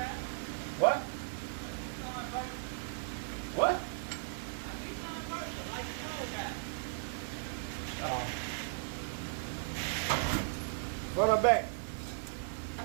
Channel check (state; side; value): silent; left; digital silence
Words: What? What? Run her back.